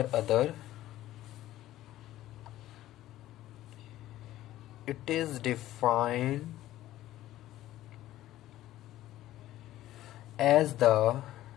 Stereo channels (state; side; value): quieter; right; 14.5 dB